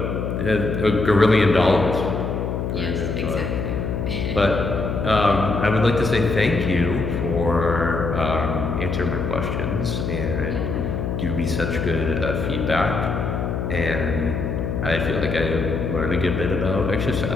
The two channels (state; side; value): noise; left; hum, 2 dB below the sound